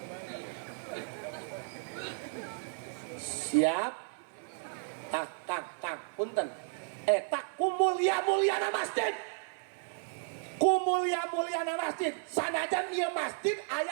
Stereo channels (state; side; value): silent; left; 55 dB below the other